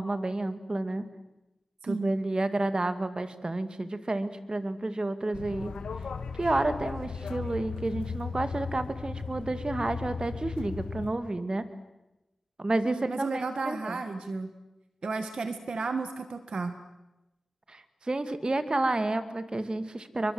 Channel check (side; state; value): both; normal; correlation 0.95